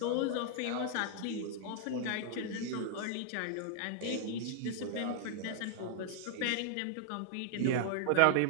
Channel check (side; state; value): both; different; correlation -0.01